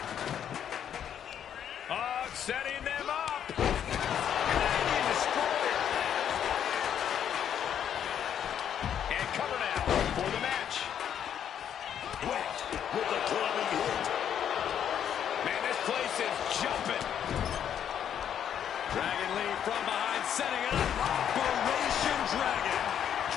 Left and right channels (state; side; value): quieter; right; 9.2 dB